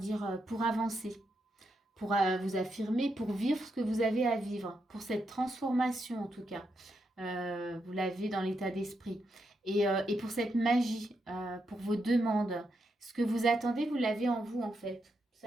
pour avancer, pour vous affirmer, pour vivre ce que vous avez à vivre, pour cette transformation en tout cas. Vous l'avez dans l'état d'esprit. Et pour cette magie, pour vos demandes, ce que vous attendez, vous l'avez en vous en fait.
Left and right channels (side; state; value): both; normal; correlation 0.82